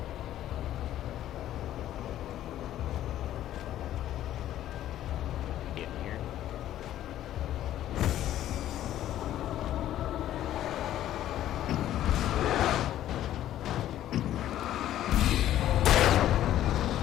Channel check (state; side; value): quieter; right; 12.5 dB